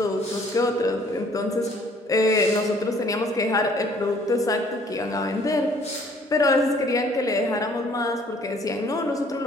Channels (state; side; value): normal; both; correlation 0.59